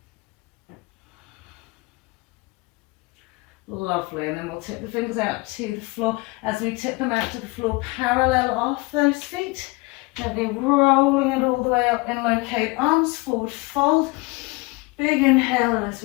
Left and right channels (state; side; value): quieter; right; 24.9 dB